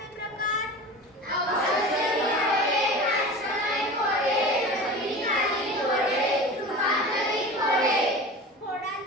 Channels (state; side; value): normal; both; correlation 0.34